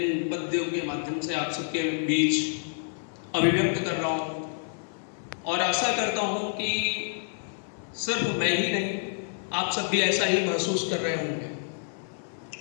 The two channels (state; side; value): silent; right; 55 dB below the other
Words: पद्यों के माध्यम से आप सबके बीच अभिव्यक्त कर रहा हूँ और आशा करता हूँ कि सिर्फ मैं ही नहीं, आप सब भी ऐसा ही महसूस कर रहे होंगे।